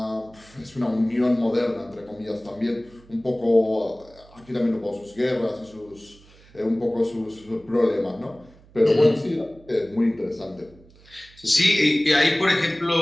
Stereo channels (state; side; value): noise; right; hum, 26 dB below the sound